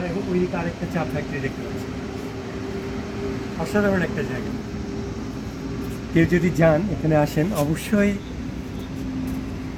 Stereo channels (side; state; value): both; identical; correlation 1.00